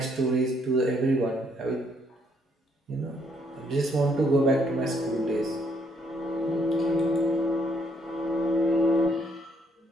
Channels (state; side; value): normal; both; correlation 0.70